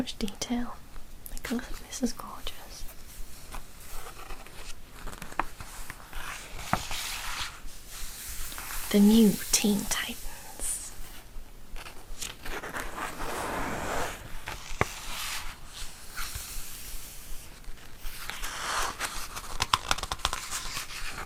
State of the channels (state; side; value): identical; both; correlation 1.00